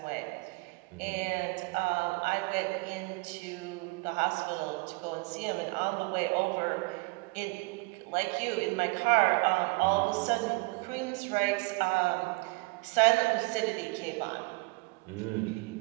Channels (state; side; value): quieter; left; 27.7 dB